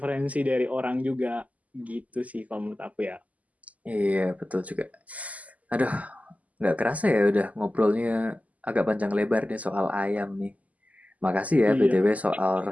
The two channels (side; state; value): left; late; 0.074 ms